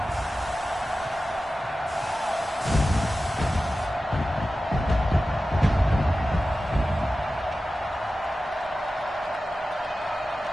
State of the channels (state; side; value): normal; both; correlation 0.94